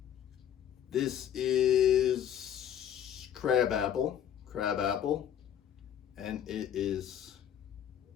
This is crab apple, and it is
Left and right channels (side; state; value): right; quieter; 9.8 dB